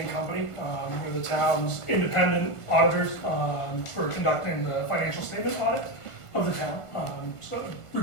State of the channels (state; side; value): late; right; 1.5 ms